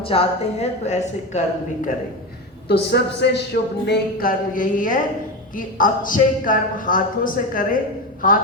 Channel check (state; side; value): normal; both; correlation 0.19